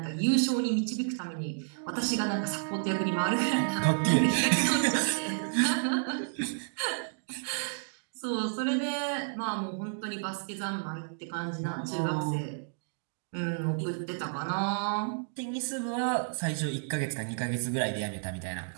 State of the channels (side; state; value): left; silent; digital silence